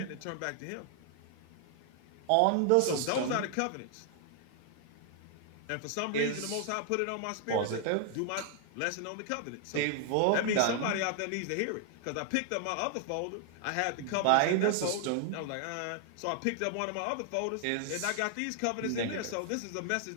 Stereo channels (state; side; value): different; both; correlation 0.00